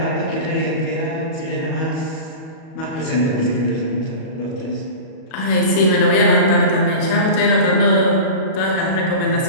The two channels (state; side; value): late; right; 38 ms